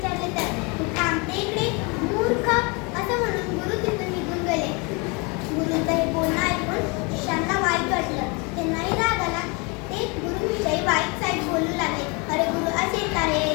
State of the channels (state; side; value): quieter; right; 30.1 dB